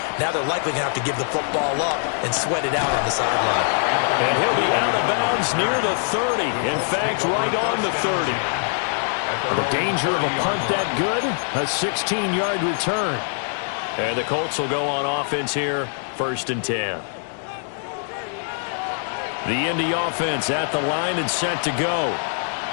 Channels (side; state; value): right; silent; 63 dB below the other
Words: Now they're likely going to have to give the football up and sweat it out on the sideline. And he'll be out of bounds near the 30. In fact, right on the 30. The danger of a punt that good, a 16-yard return. And the Colts will go on offense here, 1st and 10. The Indy offense at the line and set to go.